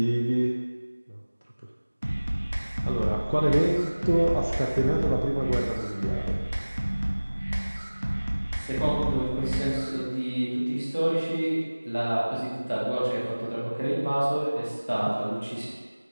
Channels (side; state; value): both; inverted; correlation -1.00